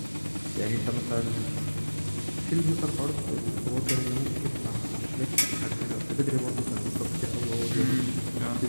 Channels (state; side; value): inverted; both; correlation -1.00